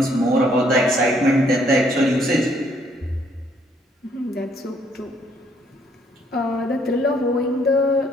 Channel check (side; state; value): both; normal; correlation 0.67